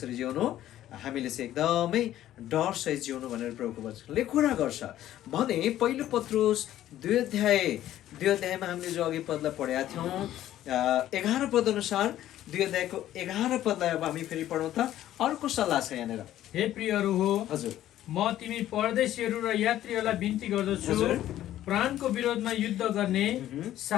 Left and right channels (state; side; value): quieter; right; 12.9 dB